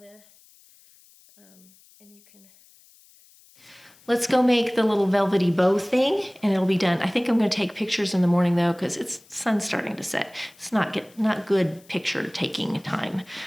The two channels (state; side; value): noise; left; hiss, 28 dB below the sound